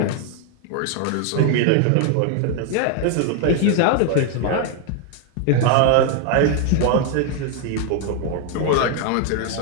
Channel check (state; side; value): different; both; correlation 0.01